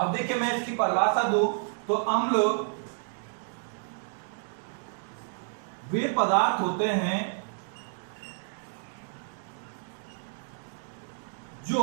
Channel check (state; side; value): silent; left; digital silence